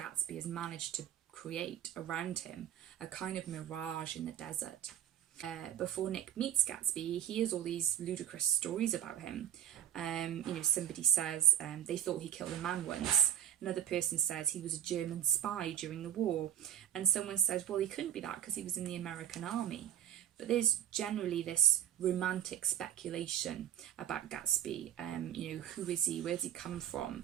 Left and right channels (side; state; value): left; quieter; 10.6 dB